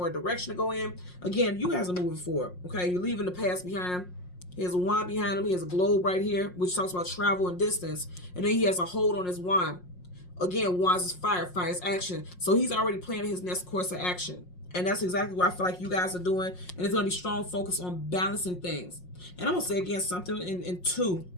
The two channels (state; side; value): late; right; 5.5 ms